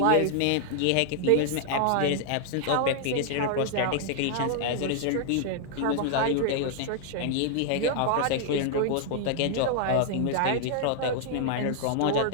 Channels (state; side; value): different; both; correlation 0.00